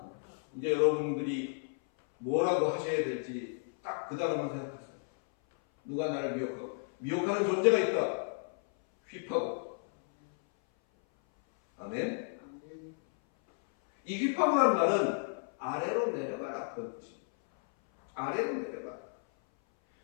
이제 여러분들이 뭐라고 하셔야 될지 딱 그 단어만 생각하세요. 누가 나를 미혹하는 존재가 있다. 휘파고. 아멘. 이 휘파고라는 말은 아래로 내려가라 그런 뜻입니다. 아래로 내려가라.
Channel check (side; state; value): right; silent; 56 dB below the other